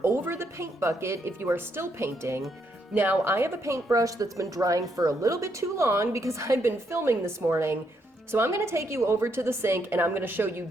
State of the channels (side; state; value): both; normal; correlation 0.76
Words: over the paint bucket if you are still painting. Now, I have a paintbrush that's been drying for a little bit too long because I've been filming this morning, so I'm going to take you over to the sink and I'm going to show you